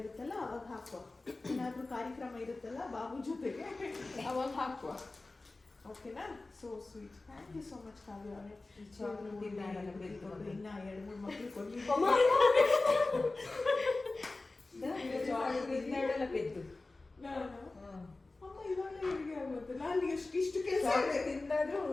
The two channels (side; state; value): right; quieter; 3.3 dB